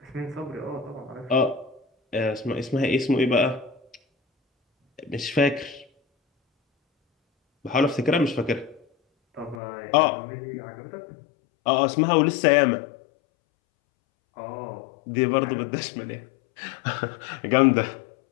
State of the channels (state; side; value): drops out; right; at 9.6 s